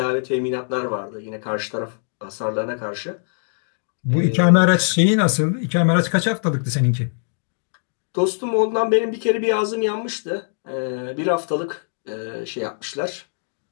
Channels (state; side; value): silent; right; digital silence